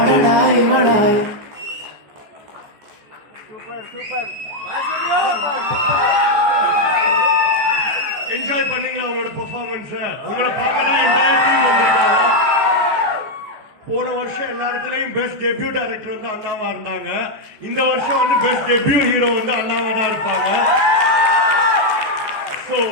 என்ஜாய் பண்ணீங்களா உங்களோட பெர்ஃபார்மன்ஸ்? உங்களை பார்க்க தான் என்டையர் டீம் வந்திருக்காங்க. போன வருஷம் எல்லா இடத்துலயும் பெஸ்ட் டெபியூ டைரக்டர் வந்து அண்ணாவா இருந்தாங்க. இந்த வருஷம் வந்து பெஸ்ட் டெபியூ ஹீரோ வந்து அண்ணாவா தான் இருப்பாங்க. சோ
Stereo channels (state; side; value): late; left; 14 ms